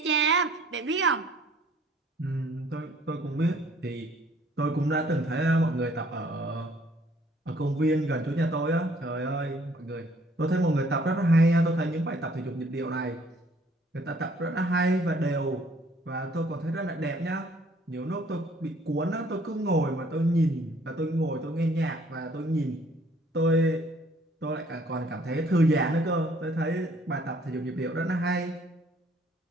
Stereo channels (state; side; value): normal; both; correlation 0.60